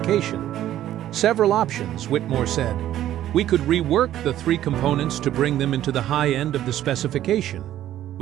"Several options," Whitmore said. "We could rework the 3 components to bring them into the high end of the specification.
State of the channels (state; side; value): quieter; left; 12.5 dB